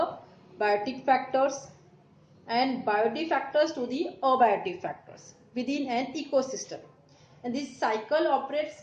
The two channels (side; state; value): both; identical; correlation 1.00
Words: biotic factors and biotic factors to the abiotic factors within an ecosystem, and this cycle